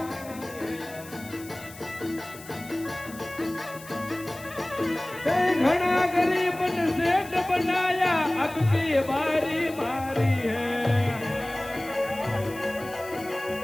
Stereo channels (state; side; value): noise; left; hiss, 18 dB below the sound